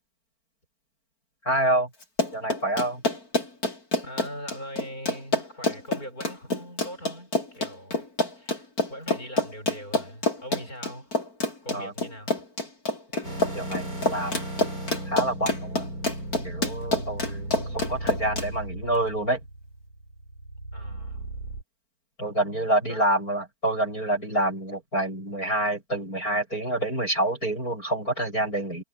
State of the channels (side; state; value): right; late; 4.4 ms